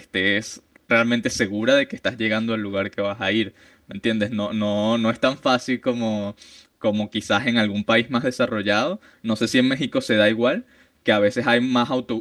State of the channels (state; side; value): identical; both; correlation 1.00